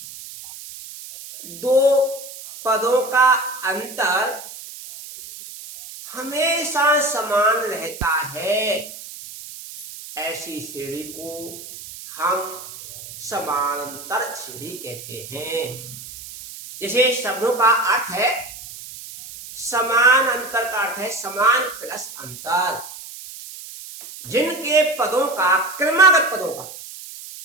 दो पदों का अंतर हमेशा समान रहता है, ऐसी श्रेणी को हम समानांतर श्रेणी कहते हैं। जैसे शब्दों का अर्थ है समान, अंतर का अर्थ है समान प्लस अंतर। जिनके पदों का, क्रमागत पदों का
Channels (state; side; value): noise; right; hiss, 14 dB below the sound